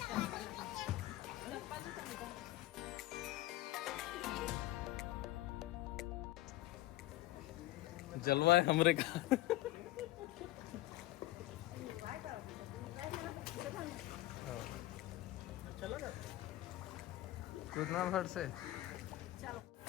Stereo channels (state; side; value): quieter; right; 16.7 dB